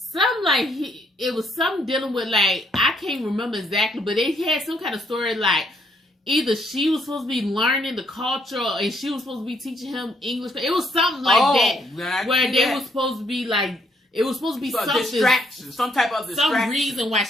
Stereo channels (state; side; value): normal; both; correlation 0.71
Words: it was something dealing with like I can't remember exactly, but they had some kind of story like either she was supposed to be learning the culture and she was supposed to be teaching him English. It was something like that where they were supposed to be like. It was supposed to be something distraction, some type of distraction. Some reason why